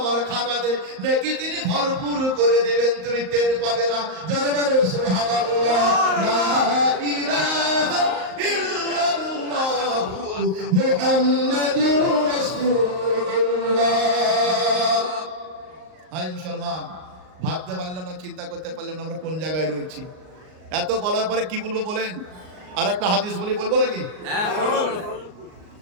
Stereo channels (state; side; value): late; left; 38 ms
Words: খাতাতে নেকি তিনি ভরপুর করে দেবেন, তুমি টের পাবে না। জোরে বলো সুবহানাল্লাহ, লা ইলাহা ইল্লাল্লাহু মুহাম্মাদুর রাসূলুল্লাহ। হাই মুসলমান, ভাবতে পারলাম না, চিন্তা করতে পারলাম না আমরা কোন জায়গায় রয়েছি। এত বলার পরে কি বলবো বলেন? আর একটা হাদিস বলবো নাকি? হ্যাঁ বলুন।